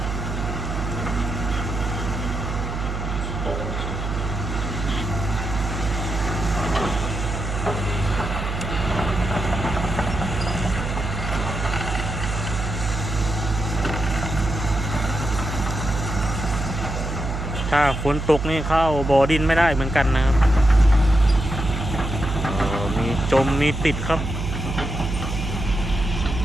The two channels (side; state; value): right; noise; hum, 4 dB below the sound